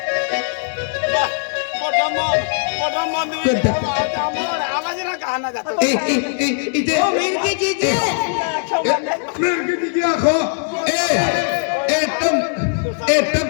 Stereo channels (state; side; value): silent; right; 58 dB below the other